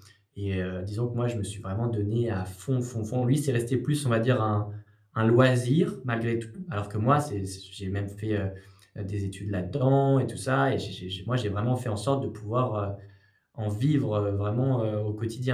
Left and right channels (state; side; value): identical; both; correlation 1.00